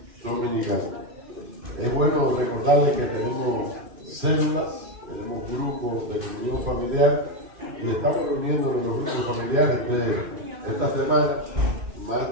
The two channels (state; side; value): late; left; 2.5 ms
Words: dominical. Es bueno recordarles que tenemos células, tenemos grupos de comunión familiar y estamos reuniéndonos en los grupos familiares de esta semana. Más